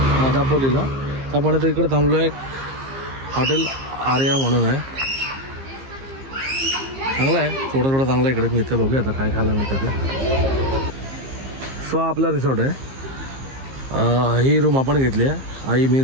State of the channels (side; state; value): left; late; 15 ms